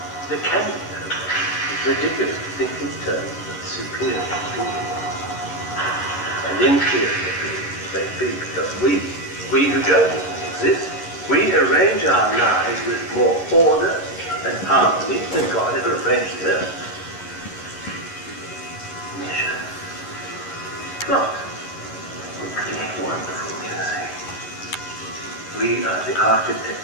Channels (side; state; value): right; late; 11 ms